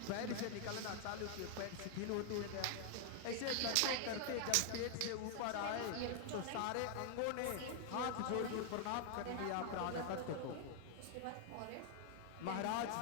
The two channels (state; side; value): different; both; correlation 0.00